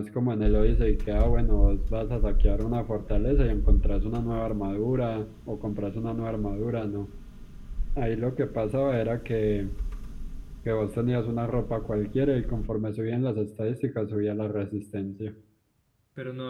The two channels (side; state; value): both; identical; correlation 1.00